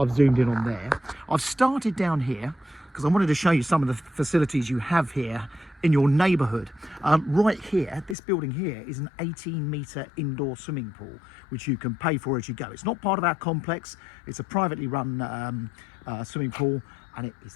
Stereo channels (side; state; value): right; drops out; at 8.2 s